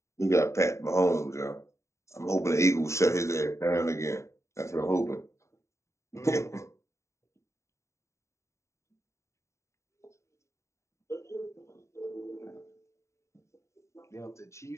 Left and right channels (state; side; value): late; right; 0.14 ms